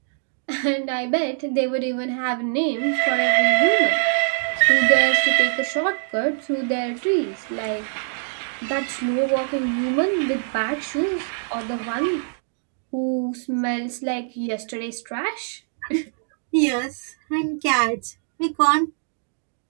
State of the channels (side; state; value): left; silent; digital silence